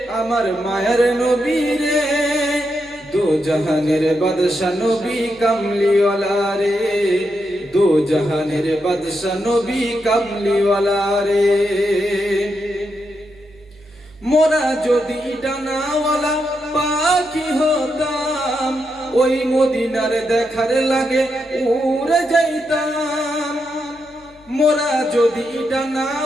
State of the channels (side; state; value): right; noise; hum, 27 dB below the sound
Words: আমার মায়ার নবী রে, দো জাহানের বাদশা নবী কামলিওয়ালা রে, দো জাহানের বাদশা নবী কামলিওয়ালা রে। মোরা যদি ডানাওয়ালা পাখি হতাম, ওই মদিনার দেখার লাগে উড়ে যাইতাম। মোরা যদি